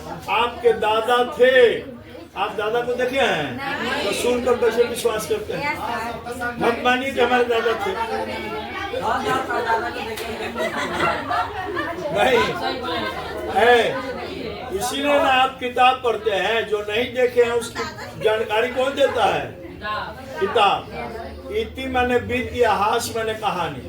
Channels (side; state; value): both; identical; correlation 1.00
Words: दादा थे, आप दादा को देखे हैं, तो सुनकर कैसे विश्वास करते हैं? मत मानिए कि हमारे दादा थे। नहीं है, इसीलिए ना आप किताब पढ़ते हैं। जो नहीं देखे हैं उसकी जानकारी कौन देता है? किताब। इति माने बीत, इतिहास माने